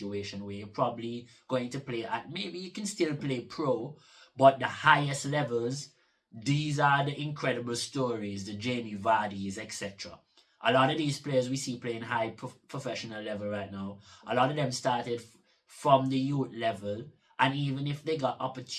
where you're probably going to play at, maybe you can still play pro, but the highest levels, these are the incredible stories, the Jamie Vardy's, etc. A lot of these players we see playing high professional level right now, a lot of them started from the youth level, and even if they got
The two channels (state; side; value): identical; both; correlation 1.00